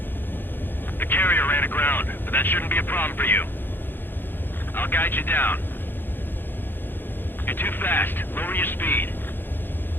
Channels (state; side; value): late; right; 0.097 ms